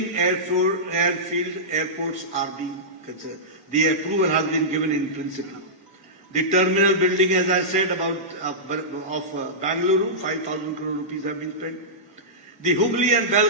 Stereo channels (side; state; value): both; normal; correlation -0.15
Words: airfield airports are being considered. The approval has been given in principle. The terminal building, as I said, of Bangalore, 5,000 crore rupees have been spent. The Hubli and